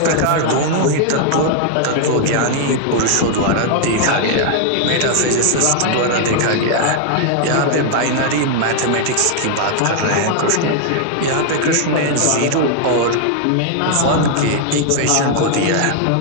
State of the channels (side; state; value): both; different; correlation 0.00